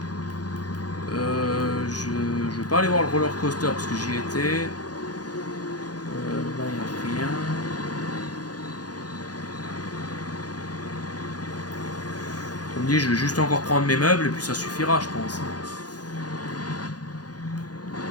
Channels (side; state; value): right; late; 0.69 ms